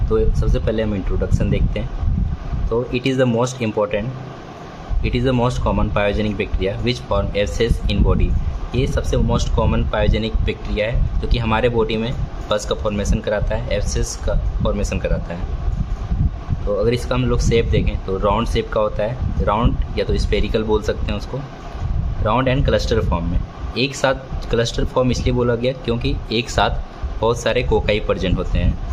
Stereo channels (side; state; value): both; identical; correlation 1.00